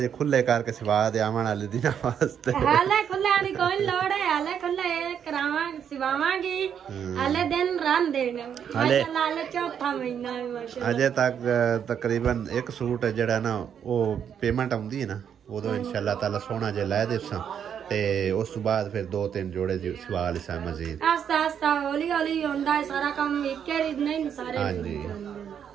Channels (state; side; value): quieter; left; 8.3 dB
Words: खुले करके सिवा दे आवन वाले दिन वास्ते। हाले खुले आनी कोई लोड़ है। हाले खुले करावा सिवावांगी। हाले दिन रन देने हाले चौथा महीना है माशाल्लाह। अजे तक तकरीबन एक सूट जड़ा ना वो पेमेंट आउंदी है ना उदो इंशाल्लाह ताला सोना जे लै देसां ते उस बाद फिर 2-3 जोड़े सिवा लिसा मजीद। आस्ता आस्ता हौली हौली होंदा है सारा काम। एक नहीं सारे। हां जी